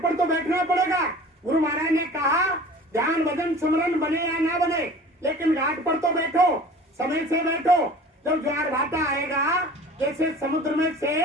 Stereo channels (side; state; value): both; normal; correlation 0.43